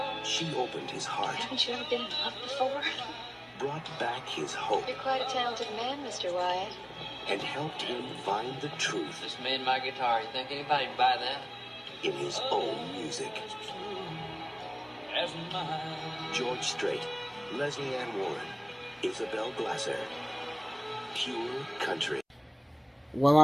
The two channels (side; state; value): both; identical; correlation 1.00